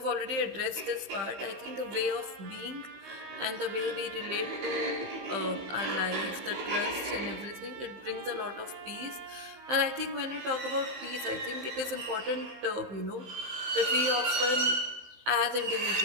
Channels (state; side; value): late; left; 15 ms